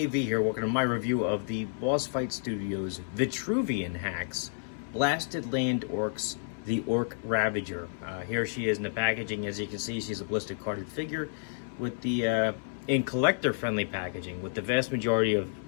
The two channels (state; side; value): silent; right; 58 dB below the other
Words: here, welcome to my review of the Boss Fight Studios Vitruvian Hacks Blasted Land Orcs, the Orc Ravager. Here she is in the packaging. As you can see, she's a blister carded figure with the in collector friendly packaging, with the vast majority of,